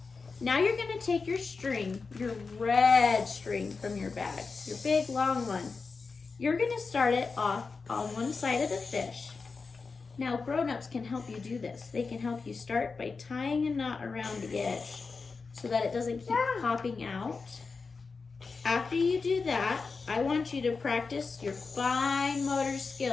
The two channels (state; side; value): quieter; right; 4.6 dB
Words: Now you're gonna take your string, your red string from your bag, your big long one. You're gonna start it off on one side of the fish. Now grown-ups can help you do this. They can help you start by tying a knot around the edge so that it doesn't keep popping out. After you do that, I want you to practice your fine motor